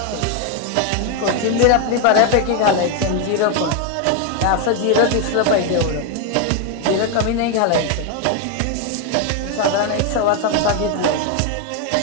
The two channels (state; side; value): different; both; correlation 0.01